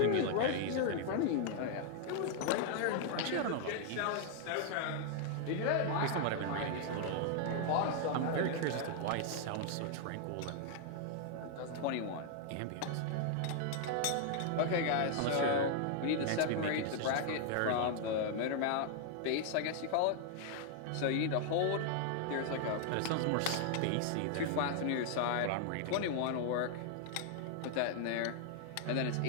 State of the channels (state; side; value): different; both; correlation 0.00